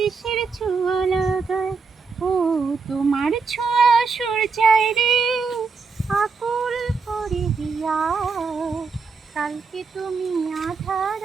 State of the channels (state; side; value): quieter; left; 4.8 dB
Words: ছোঁয়া লাগায়। ও তোমার ছোঁয়া সূর্যায় রে আকুল করে দিয়া, কালকে তুমি আঁধার